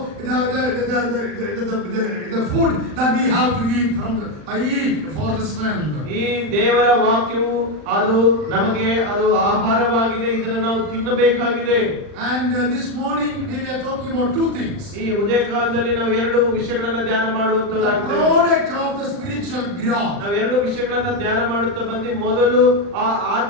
the food that we have to eat for the strength. ಈ ದೇವರ ವಾಕ್ಯವು ಅದು ನಮಗೆ ಅದು ಆಹಾರವಾಗಿದೆ, ಇದನ್ನು ನಾವು ತಿನ್ನಬೇಕಾಗಿದೆ. And this morning we were talking about two things. ಈ ಉದಯ ಕಾಲದಲ್ಲಿ ನಾವು ಎರಡು ವಿಷಯಗಳನ್ನ ಧ್ಯಾನ The ಮಾಡುವಂತವರಾಗಿದ್ದೇವೆ. product of the spiritual growth. ನಾವು ಎರಡು ವಿಷಯಗಳನ್ನ ಧ್ಯಾನ ಮಾಡುತ್ತಾ ಬಂದು ಮೊದಲು ಆ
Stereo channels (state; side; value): late; left; 40 ms